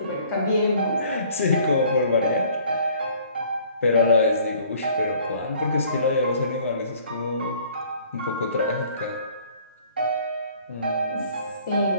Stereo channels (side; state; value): both; inverted; correlation -0.55